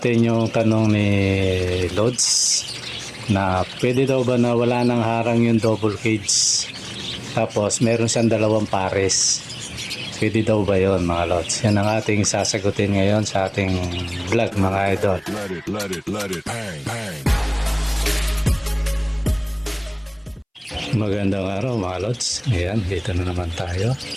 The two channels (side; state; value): both; identical; correlation 1.00